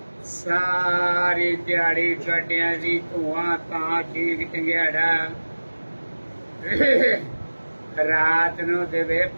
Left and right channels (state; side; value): inverted; both; correlation -1.00